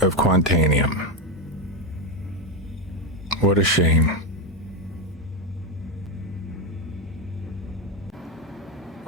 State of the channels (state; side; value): normal; both; correlation 0.10